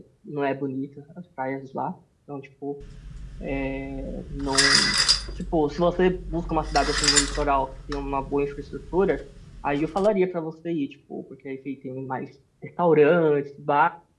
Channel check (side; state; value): both; identical; correlation 1.00